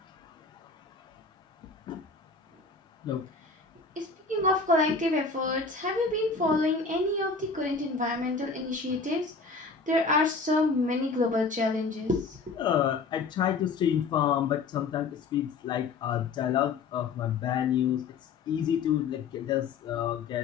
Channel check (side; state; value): right; quieter; 4.5 dB